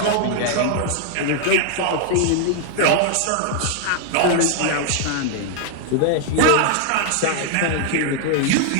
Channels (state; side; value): different; both; correlation 0.00